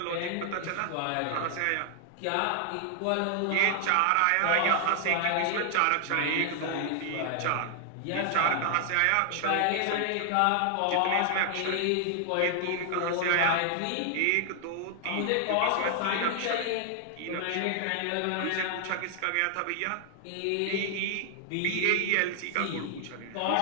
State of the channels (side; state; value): both; different; correlation 0.00